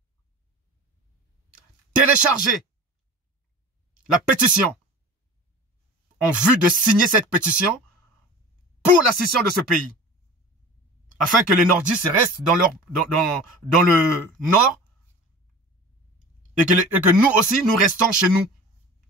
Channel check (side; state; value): both; normal; correlation 0.37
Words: télécharger la pétition en vue de signer cette pétition pour la scission de ce pays. Afin que les nordistes restent dans le nord et que nous aussi, nous restons chez nous,